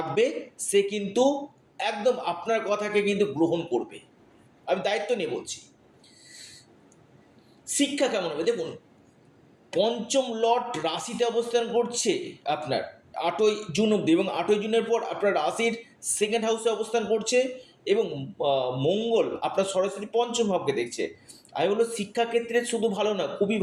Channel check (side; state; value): both; identical; correlation 1.00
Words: সে কিন্তু একদম আপনার কথাকে কিন্তু গ্রহণ করবে। আমি দায়িত্ব নিয়ে বলছি। শিক্ষা কেমন হবে? দেখুন, পঞ্চম লর্ড রাশিতে অবস্থান করছে আপনার 8ই জুন অব্দি, এবং 8ই জুনের পর আপনার রাশির সেকেন্ড হাউসে অবস্থান করছে, এবং মঙ্গল আপনার সরাসরি পঞ্চম ভাবকে দেখছে। আমি বলবো শিক্ষাক্ষেত্রে শুধু ভালো না, খুবই